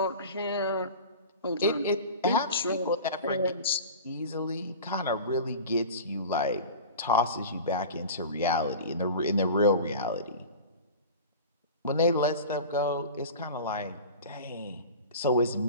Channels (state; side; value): inverted; both; correlation -0.35